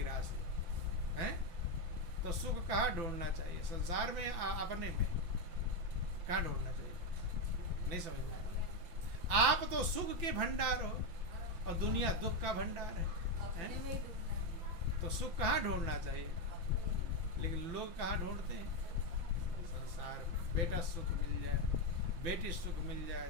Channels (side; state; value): left; late; 5.9 ms